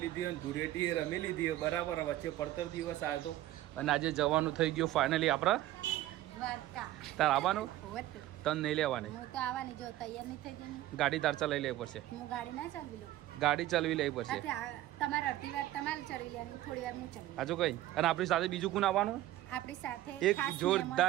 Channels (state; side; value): quieter; left; 14.9 dB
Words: અને ધૂળેટી રમી લીધી બરાબર. વચ્ચે પડતર દિવસ આવ્યો હતો અને આજે જવાનું થઈ ગયું ફાઇનલી આપણે દ્વારકા. તાર આવવાનું? તને નહીં લેવાની? હું તો આવવાની, જો તૈયાર નહીં થઈ ગઈ. ગાડી તાર ચલાવી લેવી પડશે. હું ગાડી ના ચલાવી લઉં. ગાડી ચલાવી લેવી પડશે. તમારે અડધી વાર તમારે ચલાવી લેવાની, થોડી વાર હું ચલાવી. હજુ કઈ? અને આપણી સાથે બીજું કોણ આવવાનું? આપણી સાથે એક